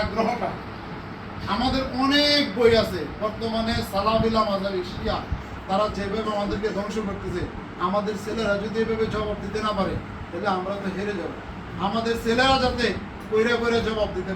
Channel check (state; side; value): identical; both; correlation 1.00